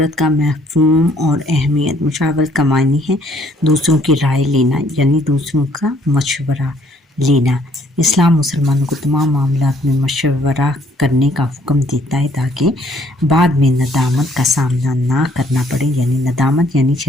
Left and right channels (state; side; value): normal; both; correlation 0.64